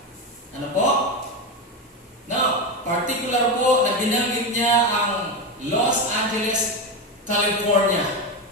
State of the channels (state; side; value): normal; both; correlation 0.14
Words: Ano po? Now, particular po na binanggit niya ang Los Angeles, California.